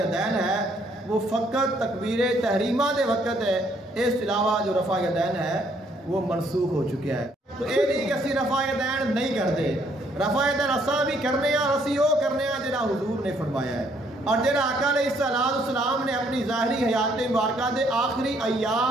ہے وہ فقط تکبیر تحریمہ دے وقت ہے، اس کے علاوہ جو رفع یدین ہے وہ منسوخ ہو چکا ہے. تو یہ نہیں کہ اسی رفع یدین نہیں کرتے، رفع یدین اساں بھی کرنے ہیں اور اسی وہ کرنے ہیں جہاں حضور نے فرمایا ہے اور جہاں آقا علیہ السلام نے اپنی ظاہری حیات مبارکہ دے آخری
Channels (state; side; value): normal; both; correlation 0.67